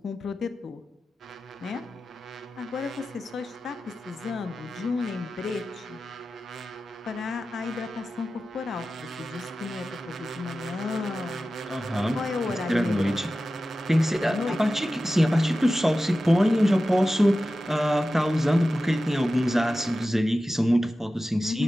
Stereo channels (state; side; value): normal; both; correlation 0.94